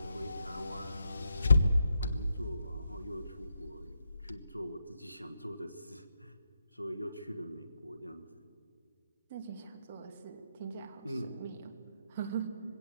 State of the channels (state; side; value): inverted; both; correlation -0.82